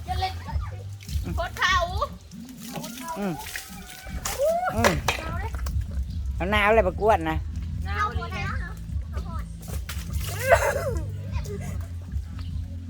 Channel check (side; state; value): both; identical; correlation 1.00